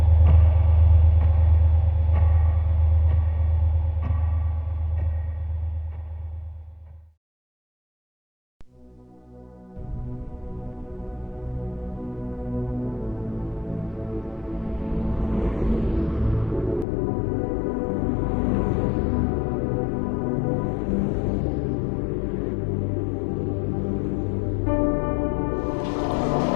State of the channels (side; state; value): right; drops out; at 16.9 s